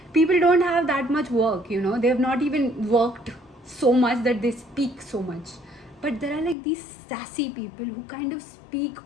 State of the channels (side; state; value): right; drops out; at 6.6 s